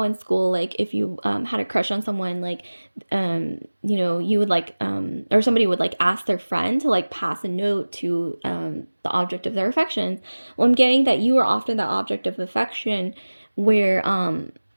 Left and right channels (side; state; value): both; inverted; correlation -1.00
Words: in school, like if you had a crush on someone, like you know, you would like or somebody would like ask their friend to like pass a note to the object of their affection. Well, I'm getting that you are often the object of affection, where